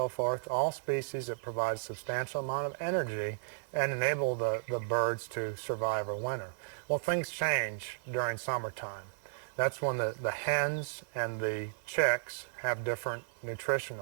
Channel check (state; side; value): silent; left; 55 dB below the other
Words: forth, all species that provide a substantial amount of energy and enable the birds to survive a winter. Well, things change during summertime. That's when the hens and the chicks have different